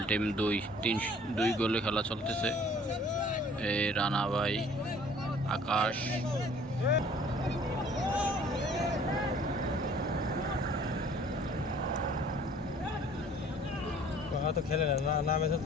team 2 গোলে খেলা চলতেছে। এই রানা ভাই, আকাশ। তো খেলে না নামে তো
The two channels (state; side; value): normal; both; correlation 0.53